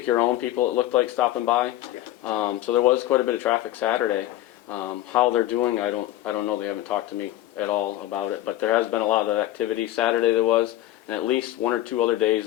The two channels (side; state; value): right; quieter; 14.3 dB